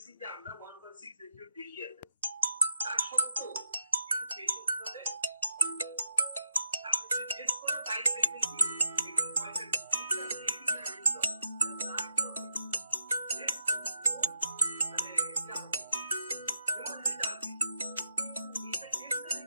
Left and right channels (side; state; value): both; inverted; correlation -0.81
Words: যে আমরা 1.6 রেশিওর বেশি আছে, তার সত্ত্বেও কিন্তু পেশেন্ট হবে আপনি যদি টেস্ট করেন বাইরে দেখবেন কি